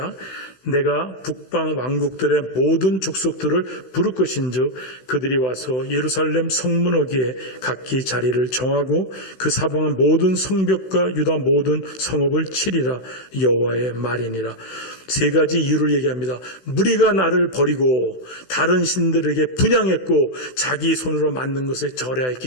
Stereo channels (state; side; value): late; right; 16 ms